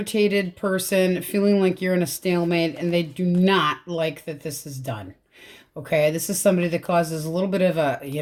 person, feeling like you're in a stalemate, and they do not like that this is done. Okay, this is somebody that causes a little bit of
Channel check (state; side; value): identical; both; correlation 1.00